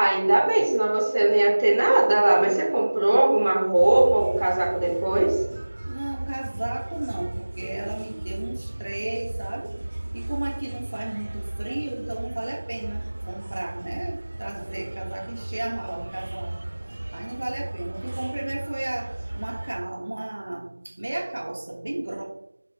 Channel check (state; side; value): inverted; both; correlation -1.00